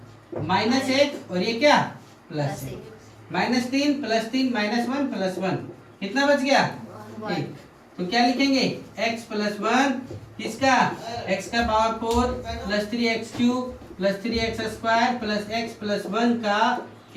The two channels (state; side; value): identical; both; correlation 1.00